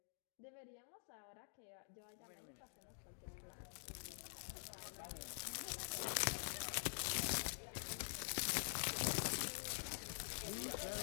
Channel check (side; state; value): right; silent; digital silence